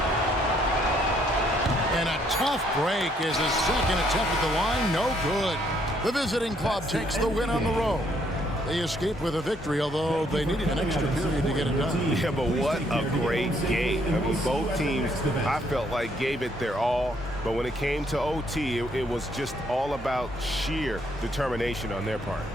And a tough break is his second attempt at the line. No good. The visiting club takes the win on the road. They escape with a victory, although they needed an extra period to get it done. Yeah, but what a great game. I mean, both teams, I felt like, gave it their all. But when it came to OT, it was just all about sheer determination on their part.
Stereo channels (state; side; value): normal; both; correlation 0.69